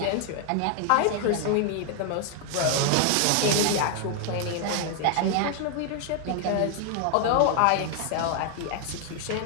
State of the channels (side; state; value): both; different; correlation 0.00